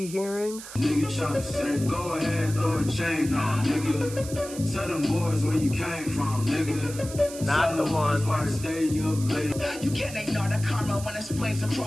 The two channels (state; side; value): noise; right; hiss, 13 dB below the sound